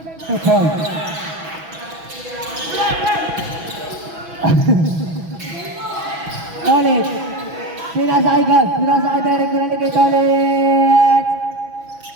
2 points. Ulit. Pinasa kay God. Pinasa kay Derek. Pinalik kay Tolit.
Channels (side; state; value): left; late; 6.1 ms